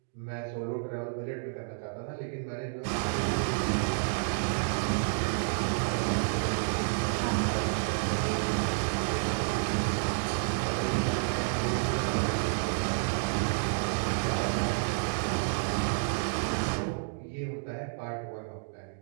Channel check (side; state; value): left; silent; digital silence